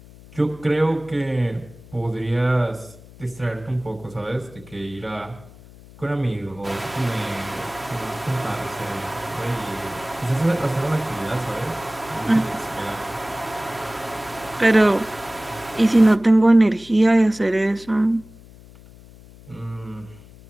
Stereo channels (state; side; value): noise; left; hum, 21 dB below the sound